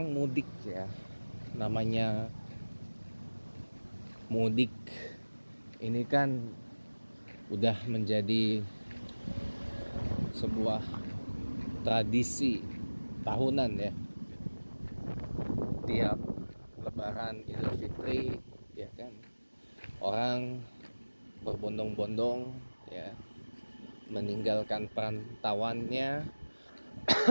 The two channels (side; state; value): both; inverted; correlation -1.00